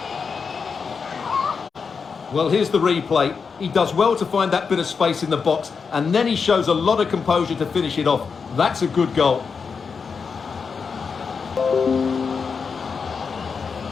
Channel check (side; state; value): right; quieter; 5.5 dB